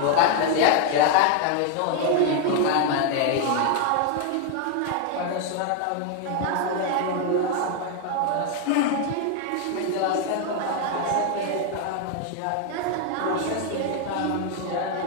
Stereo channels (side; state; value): both; different; correlation 0.00